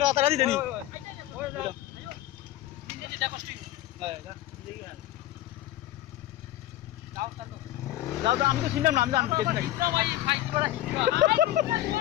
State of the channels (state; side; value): quieter; right; 14.1 dB